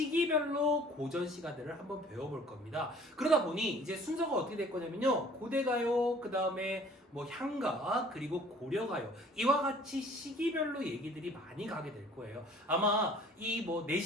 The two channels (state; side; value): normal; both; correlation 0.52